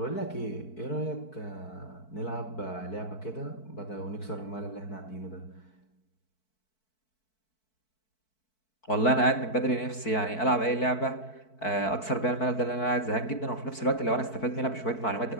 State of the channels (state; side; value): late; right; 4.6 ms